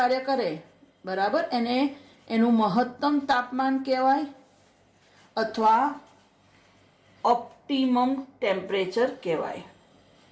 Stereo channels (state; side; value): identical; both; correlation 1.00